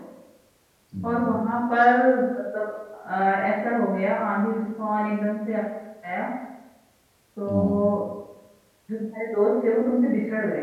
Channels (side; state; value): both; identical; correlation 1.00